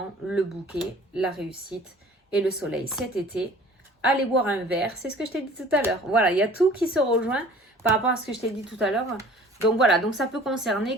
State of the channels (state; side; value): normal; both; correlation 0.48